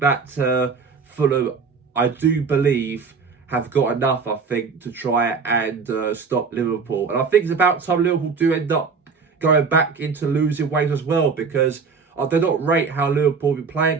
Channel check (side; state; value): left; quieter; 5.3 dB